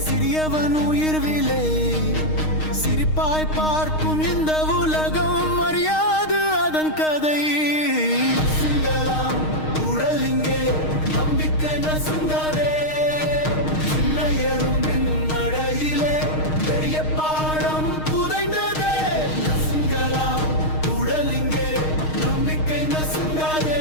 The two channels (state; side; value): late; right; 6.4 ms